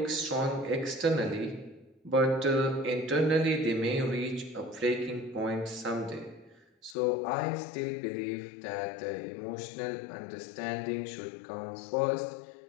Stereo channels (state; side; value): drops out; right; at 7.0 s